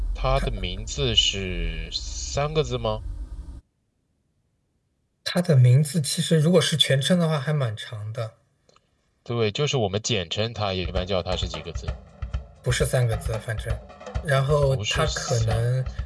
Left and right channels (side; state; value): both; identical; correlation 1.00